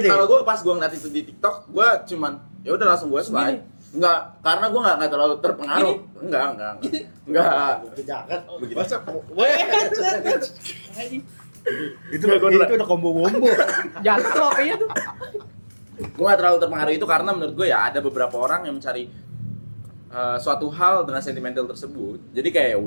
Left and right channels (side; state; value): both; inverted; correlation -1.00